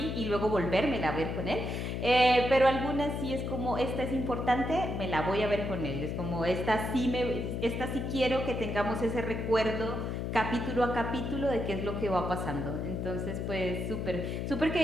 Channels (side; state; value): left; noise; hum, 3 dB below the sound